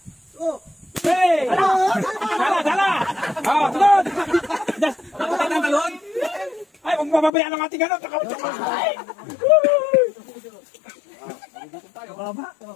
Hey! Dala! Sunod! Nakatay ng talon? Ay, huwag mababayaan ang ating ano. Ito.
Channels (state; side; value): drops out; right; at 7.3 s